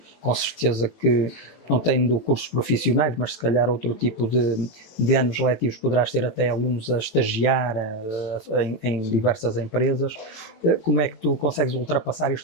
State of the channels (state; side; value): late; right; 18 ms